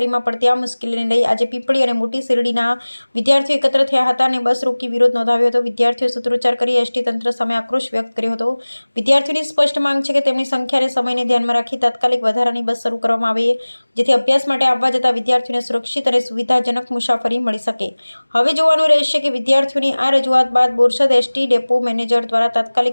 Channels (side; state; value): both; inverted; correlation -1.00